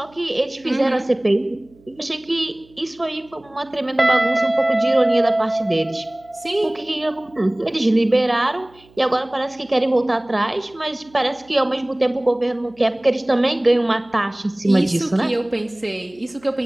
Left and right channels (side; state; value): right; noise; hum, 29 dB below the sound